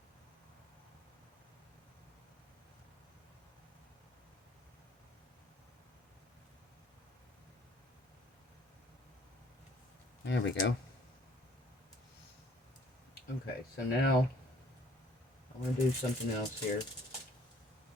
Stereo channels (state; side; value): normal; both; correlation 0.58